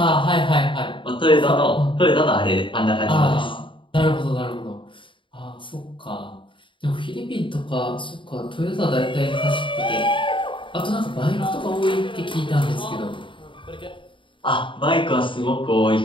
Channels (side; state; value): right; late; 0.24 ms